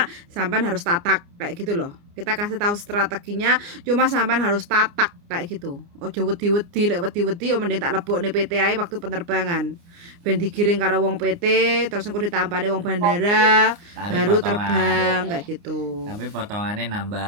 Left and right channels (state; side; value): late; left; 29 ms